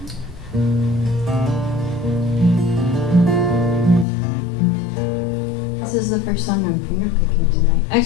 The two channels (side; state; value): right; drops out; at 4.0 s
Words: This is the first song I'm fingerpicking tonight.